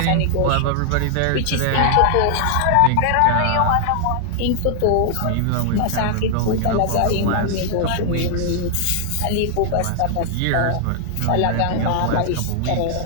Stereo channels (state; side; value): different; both; correlation 0.00